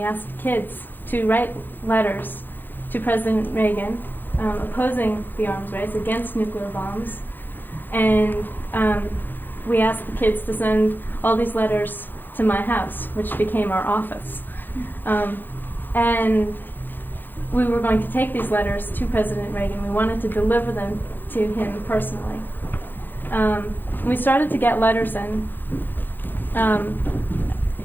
asked kids to write letters to President Reagan opposing the arms race, against nuclear bombs. And we asked the kids to send all these letters to my house, which became our office. And we were going to take these letters to President Reagan. We wanted to deliver them to him personally. We started to get letters in.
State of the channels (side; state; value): right; late; 0.092 ms